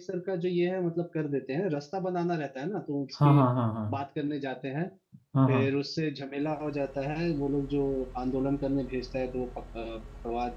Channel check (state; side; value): identical; both; correlation 1.00